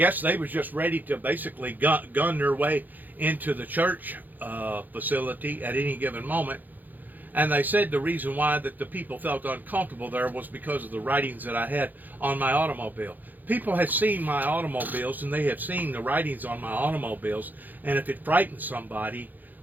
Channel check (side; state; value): left; late; 0.085 ms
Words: they was just ready to basically gun their way into the church facility at any given moment. And they said the reason why that the people felt uncomfortable there was because of the writings that I had on my automobile. People have seen my automobiles, and they have seen the writings on my automobiles, and if it frightens somebody,